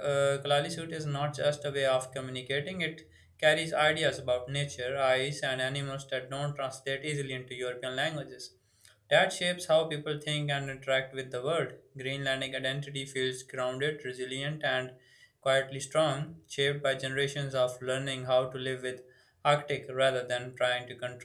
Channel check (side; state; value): both; identical; correlation 1.00